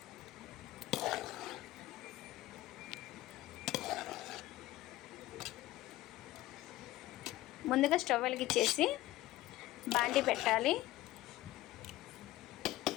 ముందుగా స్టవ్ వెలిగించేసి బాండి పెట్టాలి.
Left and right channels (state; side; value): quieter; right; 16.5 dB